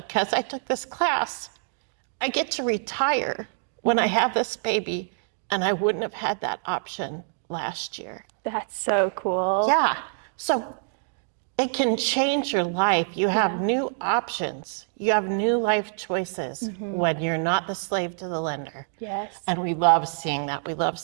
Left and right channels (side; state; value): left; silent; digital silence